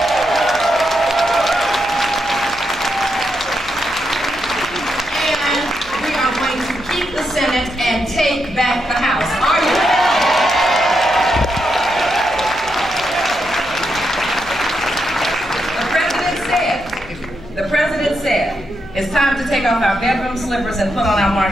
The Senate and take back the House. Are you ready? The president said, it's time to take off our bedroom slippers and put on our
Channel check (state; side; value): noise; left; hum, 21 dB below the sound